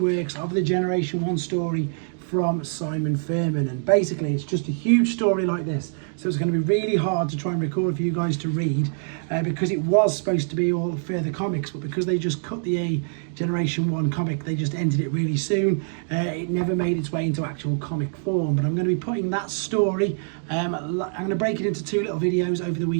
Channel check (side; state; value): left; silent; digital silence